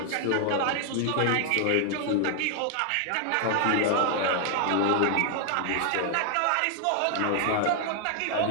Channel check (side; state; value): both; different; correlation 0.00